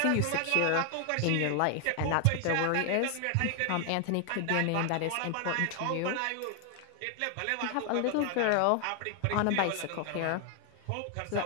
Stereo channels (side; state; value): both; different; correlation 0.00